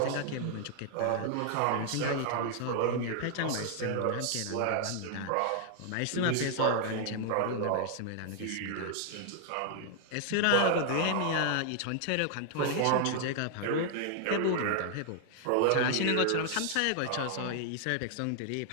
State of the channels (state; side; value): different; both; correlation 0.00